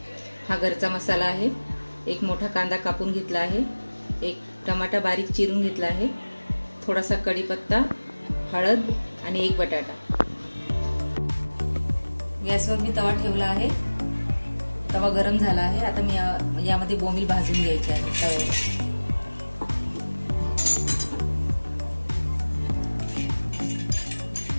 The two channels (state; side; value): inverted; both; correlation -1.00